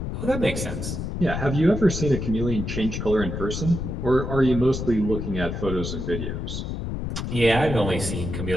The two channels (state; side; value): noise; left; rumble, 4 dB below the sound